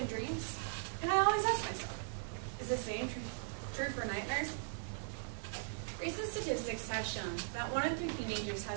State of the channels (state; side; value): silent; left; digital silence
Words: dreams?" And I always ask myself, is the same true for nightmares? Recent statistics have shown that 1 in 3 teenagers